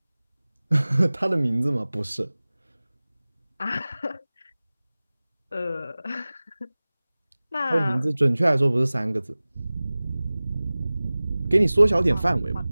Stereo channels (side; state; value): both; inverted; correlation -0.98